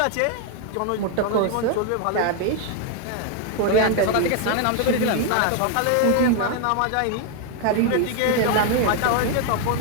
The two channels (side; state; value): both; different; correlation 0.00